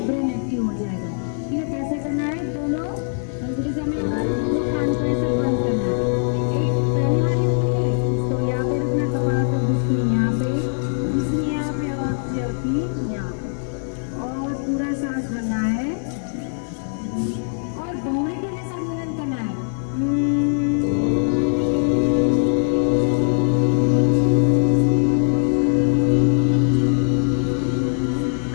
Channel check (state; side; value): silent; right; digital silence